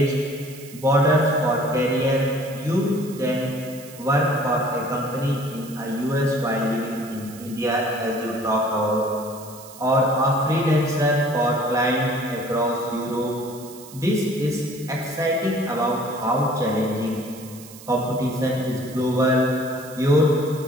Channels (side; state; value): right; noise; hiss, 18 dB below the sound